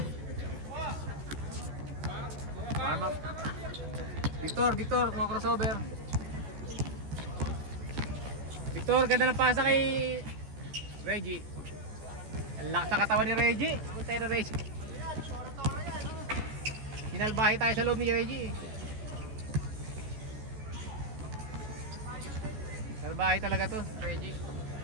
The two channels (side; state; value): left; late; 14 ms